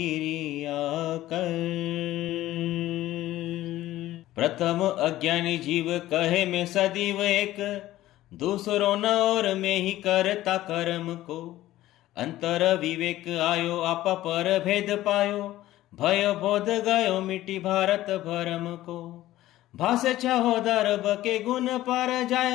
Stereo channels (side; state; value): right; quieter; 15.1 dB